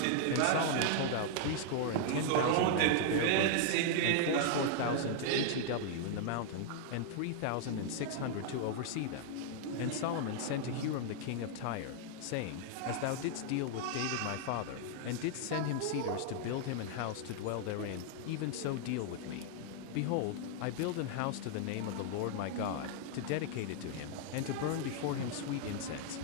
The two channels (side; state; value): both; different; correlation -0.01